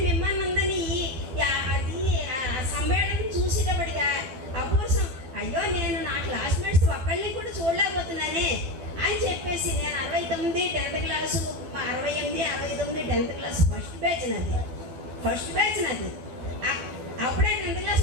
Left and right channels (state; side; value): late; left; 12 ms